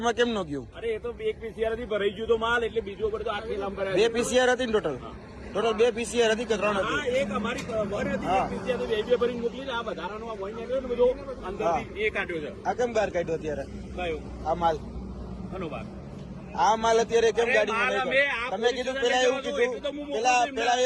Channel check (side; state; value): both; identical; correlation 1.00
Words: માં કેમ ન ગયું? અરે એ તો એક પીસીઆર થી ભરાઈ ગયું તો માલ એટલે બીજો ઉપર તો આખી લાંબ કરાય. બે પીસીઆર હતી ને ટોટલ? ટોટલ બે પીસીઆર હતી કે ત્રણ હતી? એક અમારી વન હતી, એક પીસીઆર તો બે ભરીને મોકલી છે. આ વધારાનો આ વન નીકળ્યો ને બધો અંદરથી એ કાઢ્યો છે. આ કેમ બહાર કાઢ્યો અત્યારે કયો આ માલ? ઘણો ભાગ આ માલ અત્યારે કેમ ગાડીમાં માલ નહીં અમે કાઢ્યો? તમે કીધું પેલા એવું કીધું, પેલા